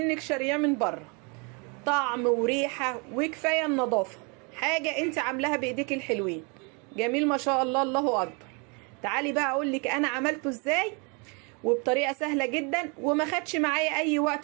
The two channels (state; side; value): quieter; left; 33.1 dB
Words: شارياه من بره. طعم وريحة وكفاية النظافة، حاجة انت عاملاها بايديك الحلوين. جميل ما شاء الله، الله اكبر. تعالي بقى اقولك انا عملته ازاي وبطريقة سهلة جدا وما خدش معايا اي